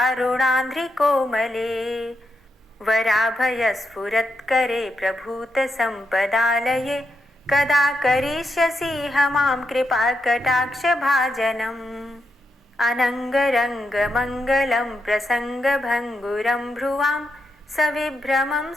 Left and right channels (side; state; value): both; normal; correlation 0.83